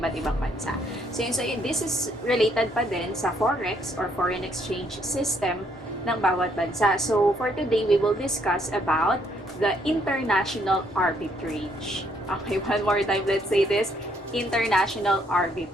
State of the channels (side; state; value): both; normal; correlation 0.69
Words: ibang bansa. This is related pa din sa forex or foreign exchange system ng bawat bansa. So, for today, we will discuss about the international arbitrage. Okay, one more time, let's say this. International